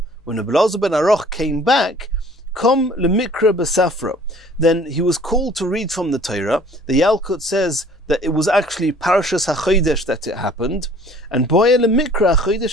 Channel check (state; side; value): normal; both; correlation 0.53